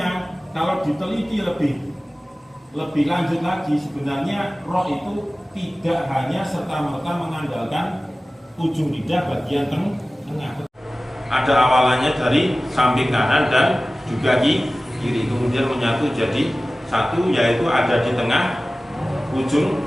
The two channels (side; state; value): both; normal; correlation 0.97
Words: kalau diteliti lebih lanjut lagi, sebenarnya roh itu tidak hanya serta-merta mengandalkan ujung lidah bagian tengah. Ada awalannya dari samping kanan dan juga kiri, kemudian menyatu jadi satu, yaitu ada di tengah ujung